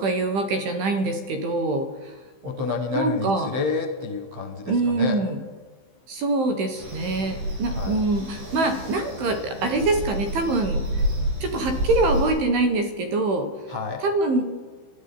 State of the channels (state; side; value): late; left; 15 ms